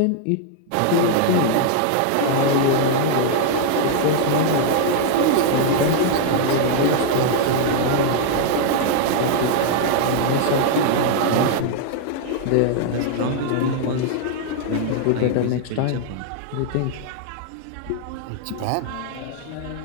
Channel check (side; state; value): both; different; correlation 0.00